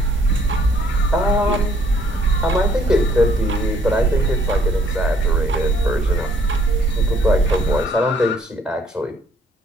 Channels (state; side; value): normal; both; correlation 0.64